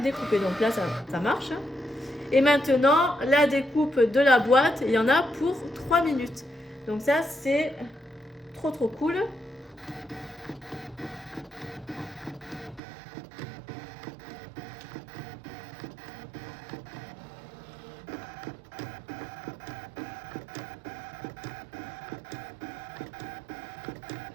découpée. Donc là, ça marche. Et maintenant, la découpe de la boîte, il y en a pour 3 minutes. Donc ça, c'est trop cool.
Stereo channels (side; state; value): left; drops out; at 12.8 s